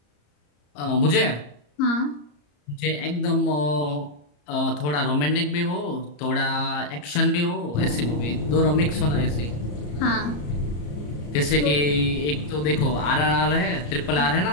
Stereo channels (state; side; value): late; right; 34 ms